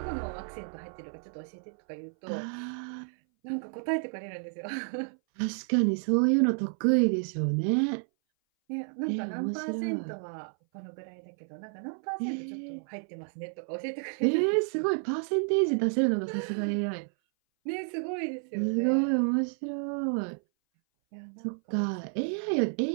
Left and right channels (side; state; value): left; silent; 57 dB below the other